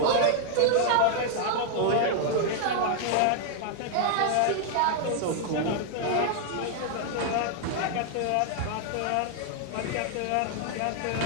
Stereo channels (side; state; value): both; different; correlation 0.00